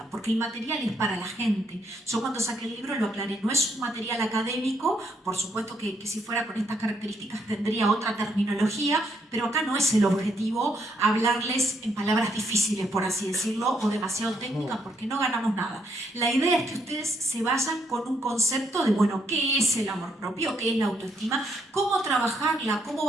porque el material es para la gente. Yo cuando saqué el libro lo aclaré, no es un material académico, por supuesto que si fuera con estas características tendría otra terminología, pero acá no es el objetivo hablarles en palabras difíciles, por así decirlo, o demasiado técnicas, porque no ganamos nada. La idea es que ustedes se vayan con un concepto de, bueno, ¿qué es el amor propio? ¿Qué es la autoestima? ¿Cómo trabajarla? ¿Cómo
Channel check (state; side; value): normal; both; correlation 0.73